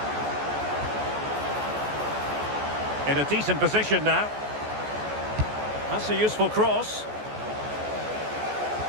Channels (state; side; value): late; left; 14 ms